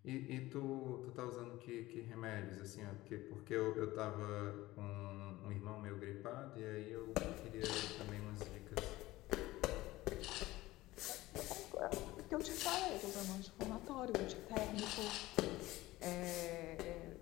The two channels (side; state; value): right; quieter; 17.9 dB